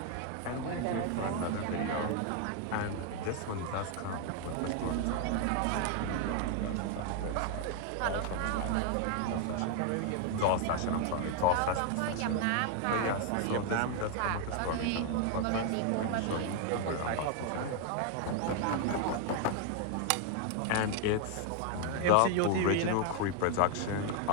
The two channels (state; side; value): different; both; correlation 0.00